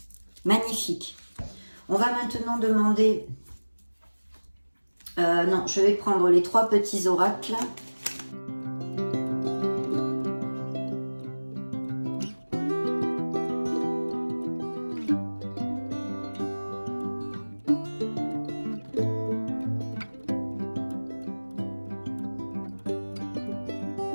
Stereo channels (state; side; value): inverted; both; correlation -1.00